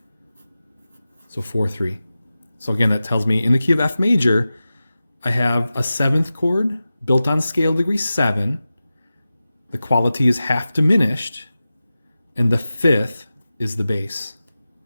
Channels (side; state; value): both; inverted; correlation -0.95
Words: So 4-3. So again, that tells me in the key of F major, I have a 7th chord built on scale degree 7. The quality is half diminished, and the 5th is the bass.